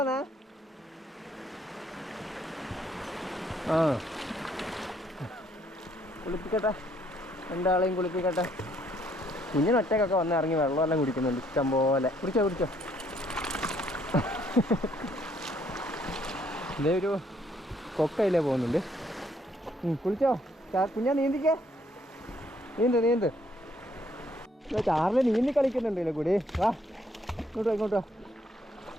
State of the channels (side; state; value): both; normal; correlation 0.67